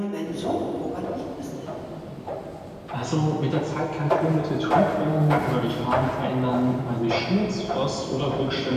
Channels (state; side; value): identical; both; correlation 1.00